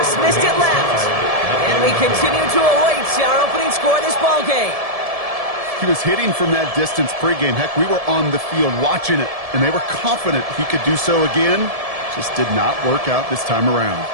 missed it left. And we continue to await our opening score of this ball game. He was hitting from that distance pregame. Heck, we were on the field watching it, and they were confident he could do so again. Just did not work out this time around.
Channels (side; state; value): left; late; 1.7 ms